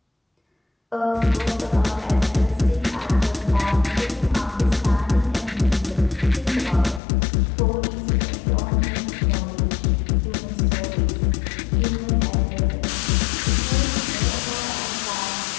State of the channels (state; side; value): drops out; right; at 7.0 s